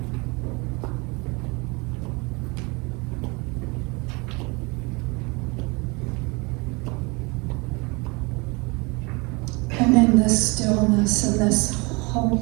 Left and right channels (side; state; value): left; quieter; 27.6 dB